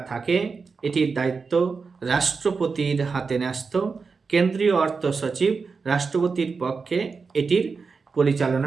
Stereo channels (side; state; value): left; quieter; 4.8 dB